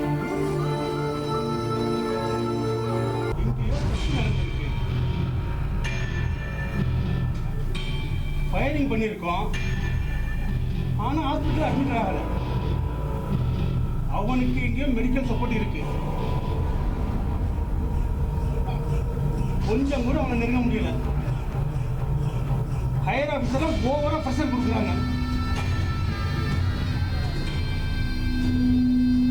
ஸ்கேனிங் பண்ணியிருக்கோம். ஆனால் ஹாஸ்பிட்டல் அட்மிட் ஆகலை. அவனுக்கு இங்கே மெடிக்கல் சப்போர்ட் இருக்கு. கொஞ்சம் கூட அவனை நெருங்க முடியல. ஹையர் ஆஃபீஸர்லாம் ஓவரா ப்ரெஷர் கொடுக்குறாங்க.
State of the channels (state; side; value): identical; both; correlation 1.00